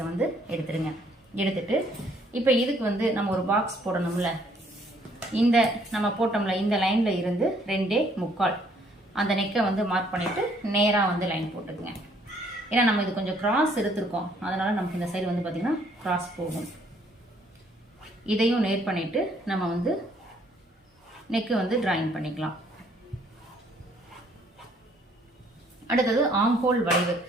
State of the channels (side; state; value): both; normal; correlation 0.64